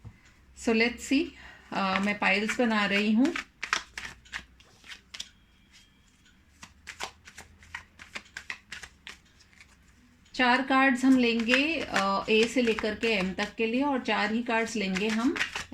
So let's see. मैं पाइल्स बना रही हूँ। चार कार्ड्स हम लेंगे ए से लेकर के एम तक के लिए और चार ही कार्ड्स लेंगे हम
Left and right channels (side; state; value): both; identical; correlation 1.00